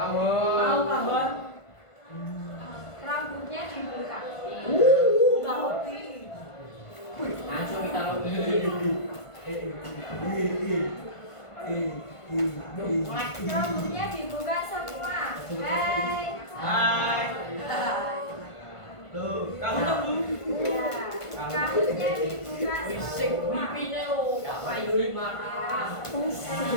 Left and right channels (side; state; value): right; late; 1.5 ms